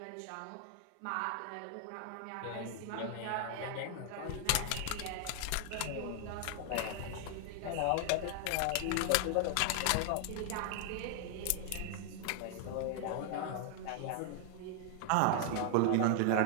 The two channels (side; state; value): both; different; correlation 0.00